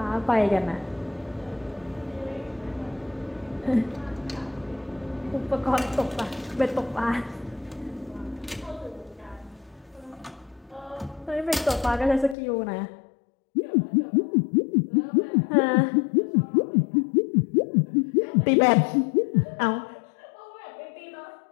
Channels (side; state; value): right; drops out; at 12.4 s